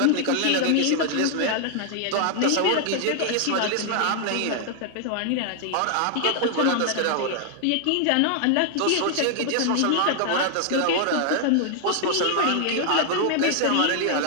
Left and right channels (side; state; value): both; different; correlation 0.00